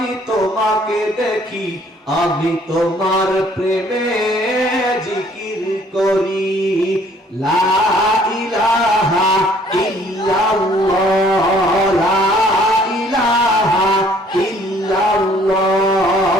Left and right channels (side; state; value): both; normal; correlation 0.59